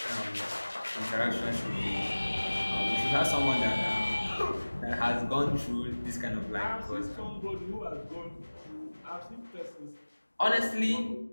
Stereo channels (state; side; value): inverted; both; correlation -1.00